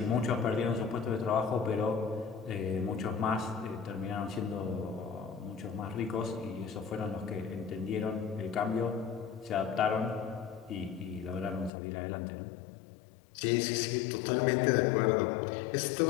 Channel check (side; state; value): right; drops out; at 11.7 s